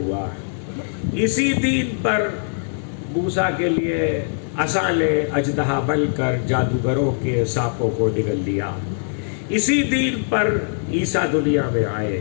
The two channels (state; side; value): silent; right; digital silence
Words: اسی دین پر موسیٰ کے لیے عصا نے اژدہا بن کر جادوگروں کے سانپوں کو نگل لیا، اسی دین پر عیسیٰ دنیا میں آئے،